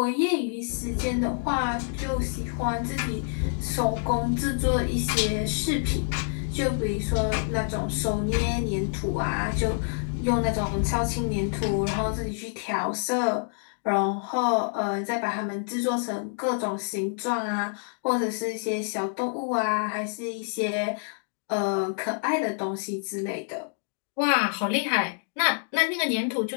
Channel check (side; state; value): right; silent; digital silence